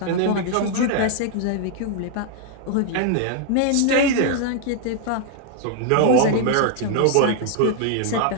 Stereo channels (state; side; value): different; both; correlation 0.00